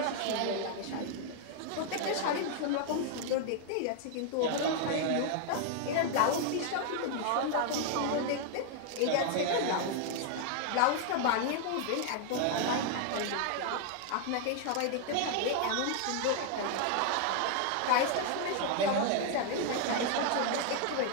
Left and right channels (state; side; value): different; both; correlation 0.00